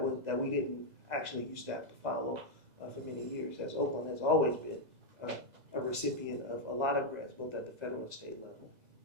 we didn't actually used to have to follow for many years, as Oakland has always been a recipient of a lot of grants, both at the federal and state level.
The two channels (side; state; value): left; late; 2.0 ms